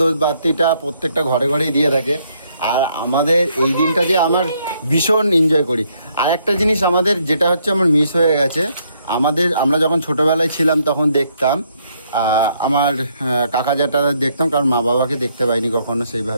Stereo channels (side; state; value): both; inverted; correlation -0.71